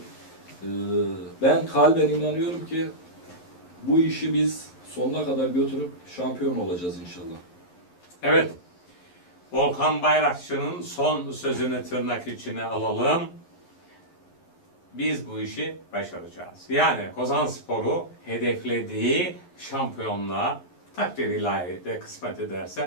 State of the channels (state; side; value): late; right; 11 ms